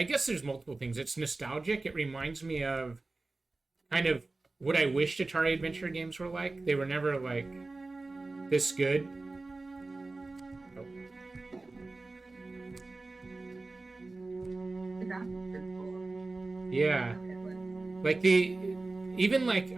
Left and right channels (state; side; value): quieter; left; 3.3 dB